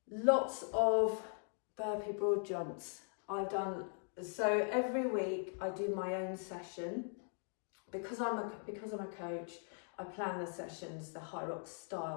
Lots of burpee broad jumps. So every week I do my own session. Because I'm a coach, I plan the sessions, the Hyrox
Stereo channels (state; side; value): silent; right; 51 dB below the other